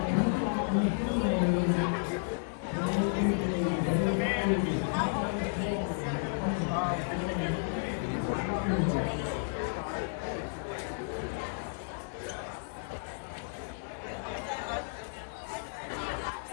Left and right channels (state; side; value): silent; right; 56 dB below the other